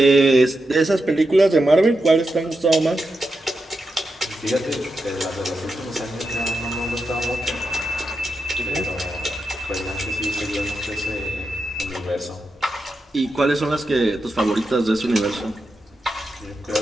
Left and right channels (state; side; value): normal; both; correlation 0.88